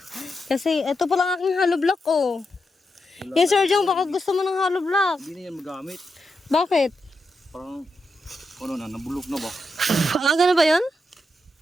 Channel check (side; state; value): both; normal; correlation 0.85